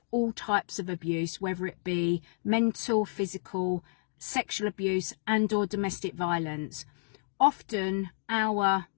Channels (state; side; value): silent; right; digital silence